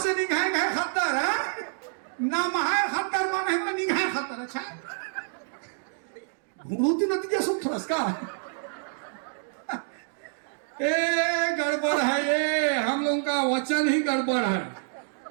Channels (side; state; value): left; silent; digital silence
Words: निगाह गए खद्दर है? नाम है खद्दर माने है निगाह खद्दर। अच्छा घूमती नतीजा सुख थोड़ा का ए गड़बड़ है, ये हम लोगों का वचन ही गड़बड़ है।